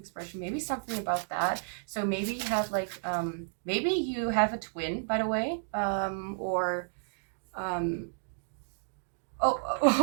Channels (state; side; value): silent; left; digital silence